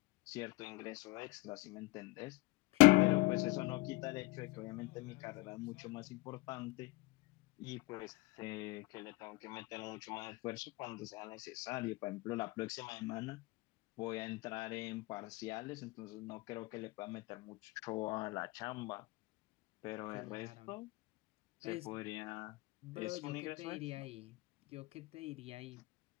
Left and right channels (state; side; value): quieter; right; 22.3 dB